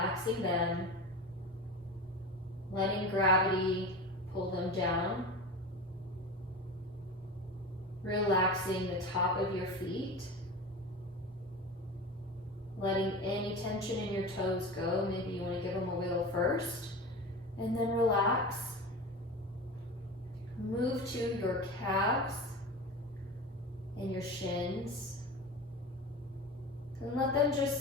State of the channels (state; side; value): normal; both; correlation 0.29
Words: them, letting gravity pull them down, relaxing the top of your feet, letting any tension in your toes go. Maybe you want to give them a wiggle first, and then relax. Move to your calves and your shins, and let them